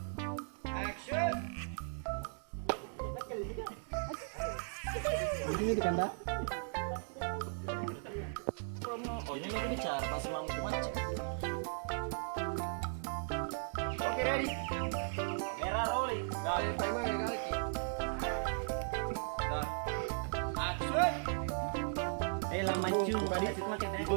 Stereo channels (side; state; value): left; silent; digital silence